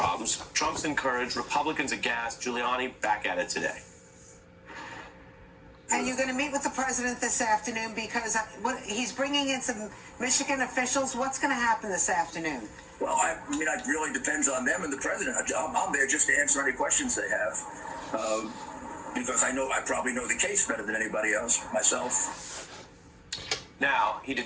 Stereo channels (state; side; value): identical; both; correlation 1.00